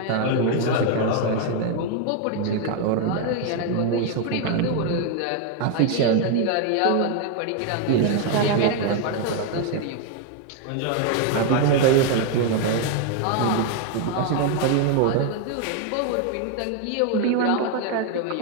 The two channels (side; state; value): both; different; correlation 0.01